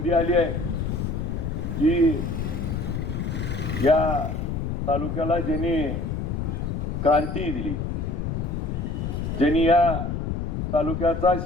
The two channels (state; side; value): noise; left; rumble, 2 dB below the sound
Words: आली आहे की या तालुक्याला ज्यांनी क्रांती दिली, ज्यांनी या तालुक्याचा